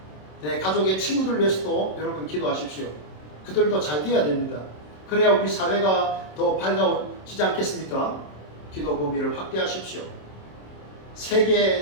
내 가족의 친구들 위해서도 여러분 기도하십시오. 그들도 잘 돼야 됩니다. 그래야 우리 사회가 더 밝아지지 않겠습니까? 기도 범위를 확대하십시오.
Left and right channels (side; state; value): right; late; 27 ms